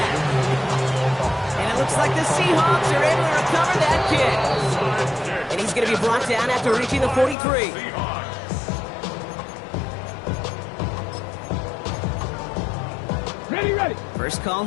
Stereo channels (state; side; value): drops out; right; at 7.4 s